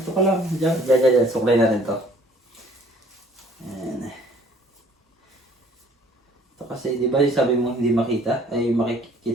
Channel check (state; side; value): normal; both; correlation 0.57